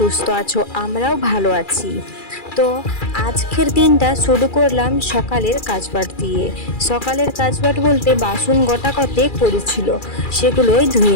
আছো, আমরাও ভালো আছি। তো আজকের দিনটা শুরু করলাম সকালের কাজবাট দিয়ে। সকালের কাজবাট বলতে বাসন গোটা কতেক পড়েছিল, সেগুলোই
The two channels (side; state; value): right; late; 2.4 ms